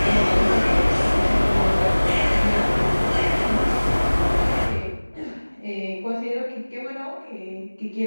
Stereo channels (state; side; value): inverted; both; correlation -1.00